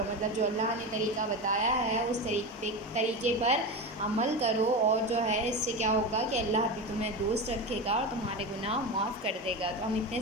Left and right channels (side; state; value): both; normal; correlation 0.22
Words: مطلب جو اللہ نے طریقہ بتایا ہے اس طریقے پر عمل کرو، اور جو ہے اس سے کیا ہوگا کہ اللہ بھی تمہیں دوست رکھے گا اور تمہارے گناہ معاف کر دے گا۔ تو ہم اتنے